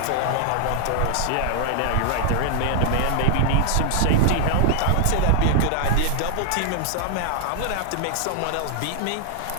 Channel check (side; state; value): both; different; correlation 0.00